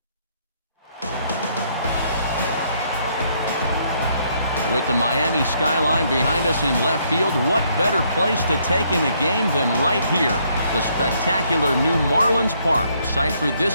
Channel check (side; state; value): both; inverted; correlation -0.70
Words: With the Miami skyline behind us in left field, what better place to take in a game than right here? The spectacular new Marlins Park, site for